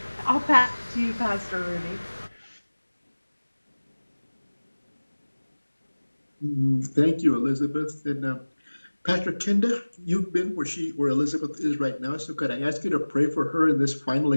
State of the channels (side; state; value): both; inverted; correlation -1.00